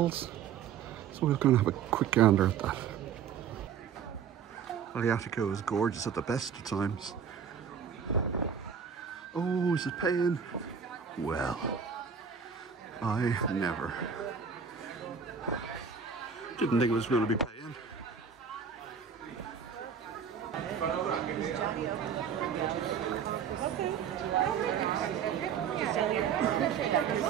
So we're going to have a quick gander at that. Lajatico is gorgeous at the best of times. Oh, is it paying? Well, I never. Didn't think it was going to be paying.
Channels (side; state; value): left; quieter; 7.1 dB